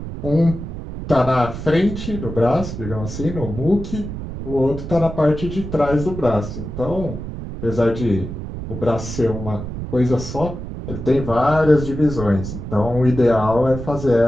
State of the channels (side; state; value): right; noise; rumble, 8 dB below the sound